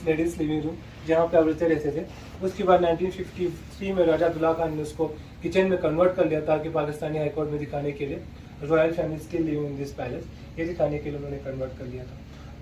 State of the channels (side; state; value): both; identical; correlation 1.00